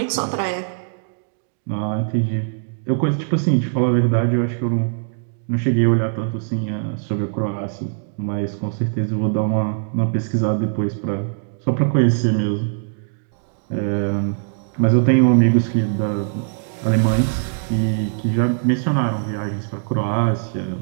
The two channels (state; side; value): silent; left; digital silence